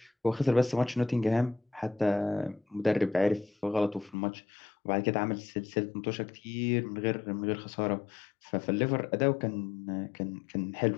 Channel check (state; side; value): drops out; right; at 4.2 s